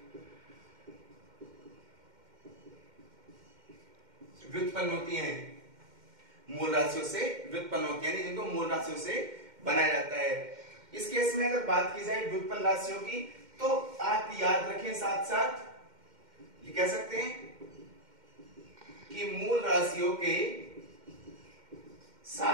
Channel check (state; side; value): late; left; 2.1 ms